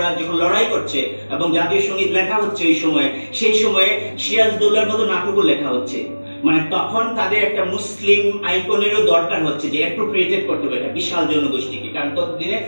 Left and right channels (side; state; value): both; inverted; correlation -1.00